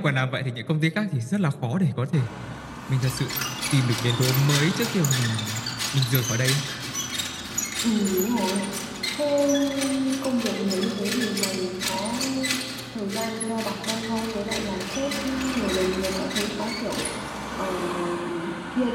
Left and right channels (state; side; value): identical; both; correlation 1.00